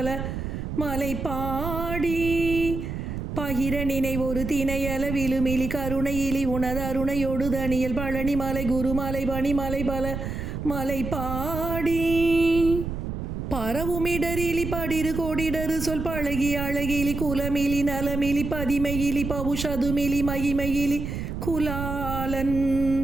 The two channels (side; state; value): right; noise; rumble, 5 dB below the sound